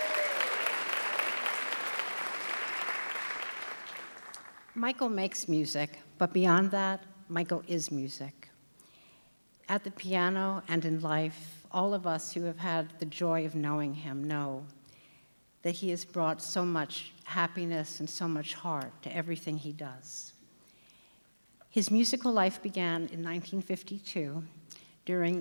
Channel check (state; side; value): inverted; both; correlation -1.00